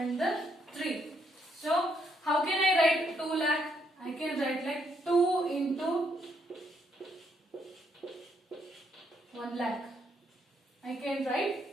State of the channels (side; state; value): both; normal; correlation 0.74